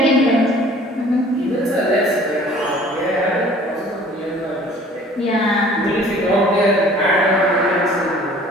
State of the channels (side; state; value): both; normal; correlation 0.51